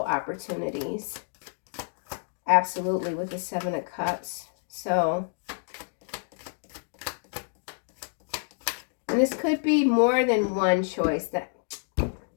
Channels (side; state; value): right; silent; digital silence